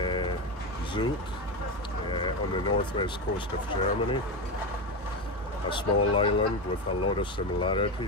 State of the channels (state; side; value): normal; both; correlation 0.16